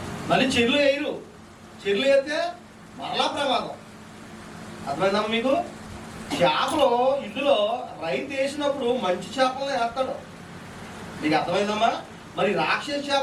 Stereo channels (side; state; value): both; identical; correlation 1.00